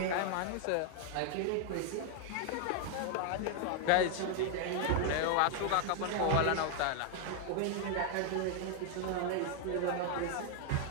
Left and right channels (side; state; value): both; different; correlation 0.00